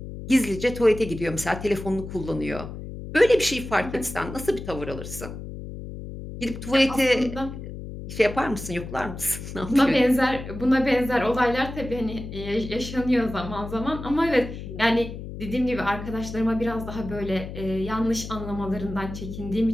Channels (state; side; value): noise; left; hum, 10 dB below the sound